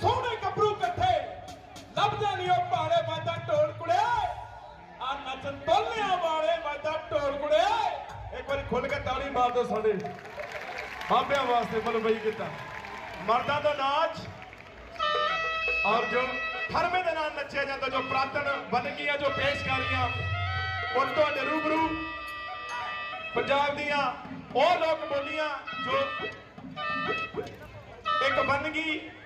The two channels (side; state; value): both; identical; correlation 1.00